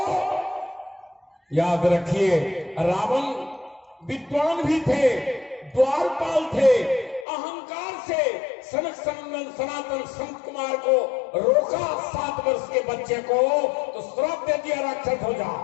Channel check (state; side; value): drops out; right; at 7.2 s